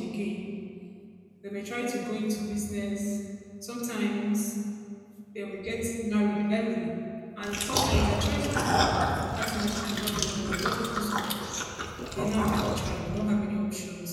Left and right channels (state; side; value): identical; both; correlation 1.00